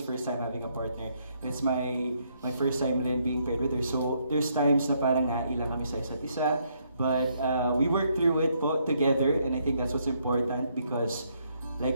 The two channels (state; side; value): inverted; both; correlation -0.73